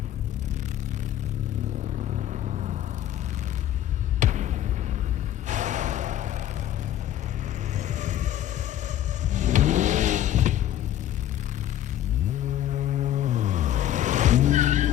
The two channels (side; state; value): right; quieter; 12.0 dB